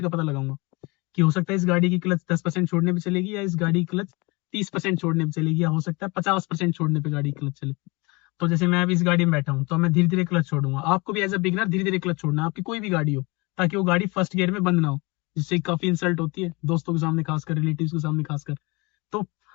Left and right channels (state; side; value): quieter; right; 26.1 dB